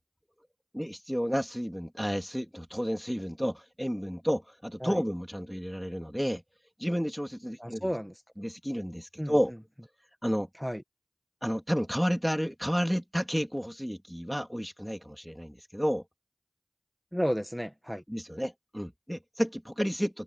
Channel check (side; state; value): both; identical; correlation 1.00